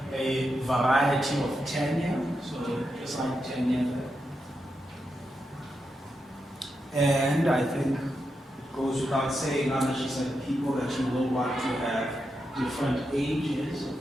a variety of tenure. So, just like tenure. And I think it goes without saying, she said, people that you will want to have different ages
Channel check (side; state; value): both; normal; correlation 0.86